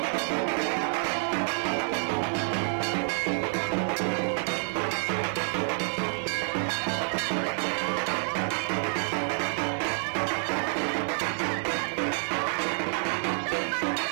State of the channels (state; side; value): silent; left; 59 dB below the other